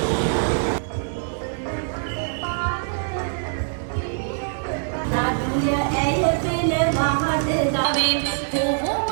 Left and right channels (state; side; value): silent; left; digital silence